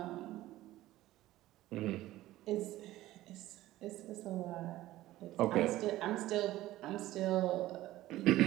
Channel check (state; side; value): quieter; left; 15.8 dB